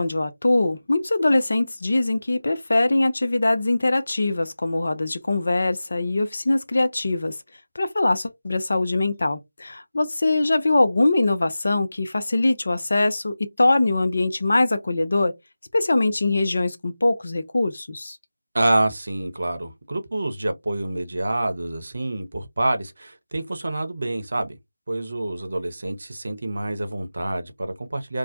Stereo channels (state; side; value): inverted; both; correlation -0.96